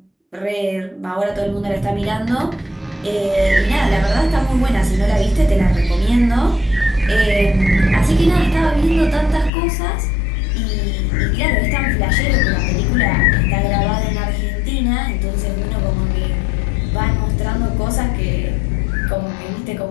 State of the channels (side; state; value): right; drops out; at 9.5 s